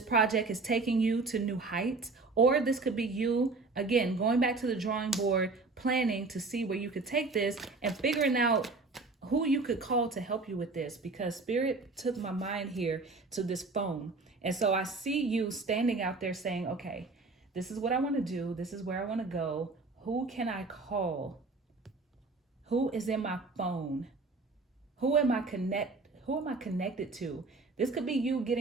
project is taking you to new heights, or this could be you, again, going back to the drawing board, planning to see where you could take this and figuring out who you could call to help you with this, because Spirit took my mind here to this phone. And so I see you standing out there saying, okay, this is what I want to do. This is where I want to go. Who can I call? Who is in my phone? Who am I connected to? This could be you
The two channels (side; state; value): left; quieter; 3.7 dB